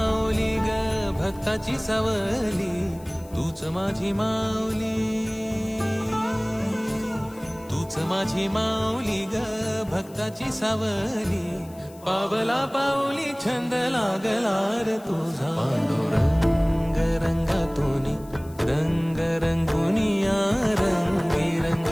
ग भक्ताची सावली तूच माझी माऊली तूच माझी माऊली ग भक्ताची सावली पावला पाऊली छंद लागला रे तुझा पांडुरंग रंगातूनी रंग रंगुनिया रंग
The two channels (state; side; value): noise; left; hiss, 24 dB below the sound